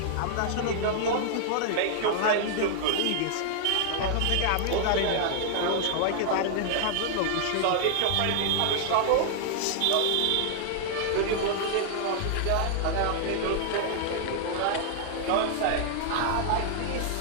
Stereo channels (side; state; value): both; different; correlation 0.00